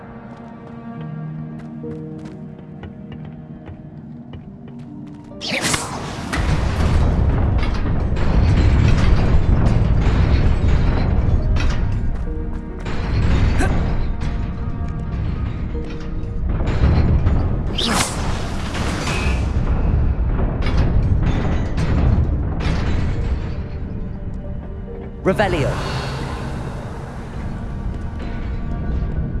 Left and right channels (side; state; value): both; identical; correlation 1.00